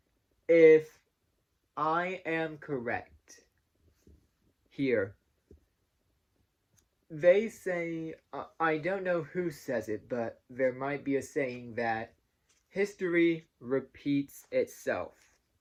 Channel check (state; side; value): identical; both; correlation 1.00